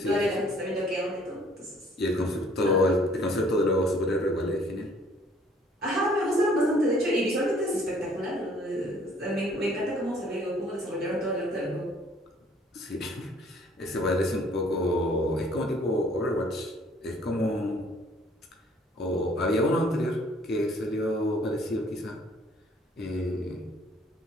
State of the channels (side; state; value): both; normal; correlation 0.59